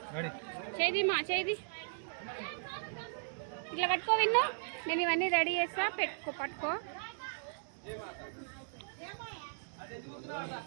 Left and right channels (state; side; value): silent; left; digital silence